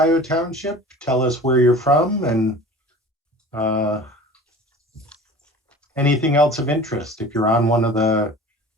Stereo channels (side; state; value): both; normal; correlation 0.41